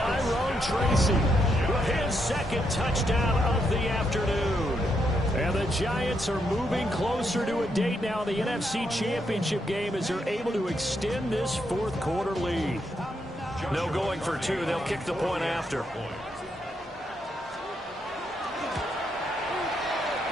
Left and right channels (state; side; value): normal; both; correlation 0.79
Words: Tracy with his 2nd touchdown of the afternoon. And the Giants are moving closer to a date now in the NFC Championship game as they're able to extend this 4th quarter lead. No going for 2. They'll kick the point after. Point